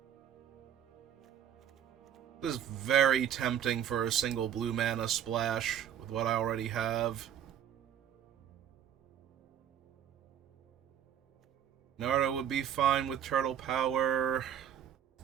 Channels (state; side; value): quieter; left; 9.7 dB